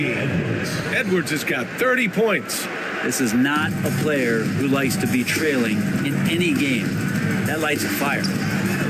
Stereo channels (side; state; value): both; identical; correlation 1.00